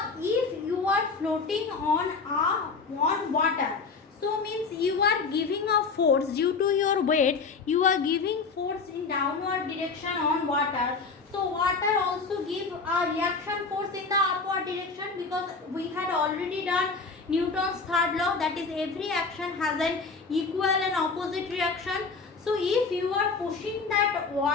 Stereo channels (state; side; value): quieter; right; 4.6 dB